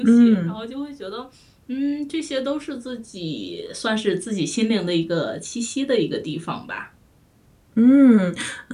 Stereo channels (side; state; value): both; identical; correlation 1.00